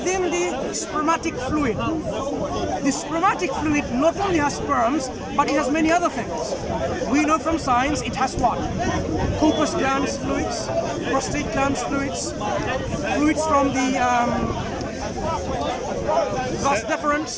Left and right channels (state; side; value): identical; both; correlation 1.00